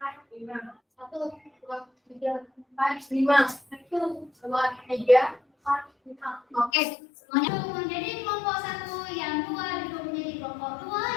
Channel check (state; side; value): drops out; right; at 6.7 s